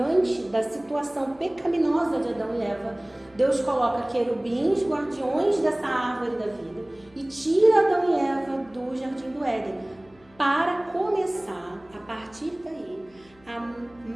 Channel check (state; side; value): noise; left; hum, 29 dB below the sound